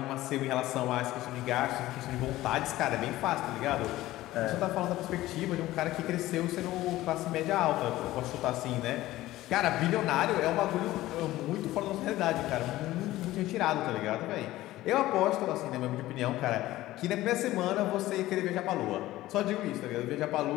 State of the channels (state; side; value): quieter; right; 16.3 dB